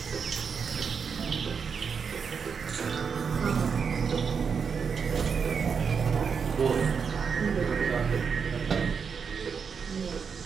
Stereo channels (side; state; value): left; quieter; 6.1 dB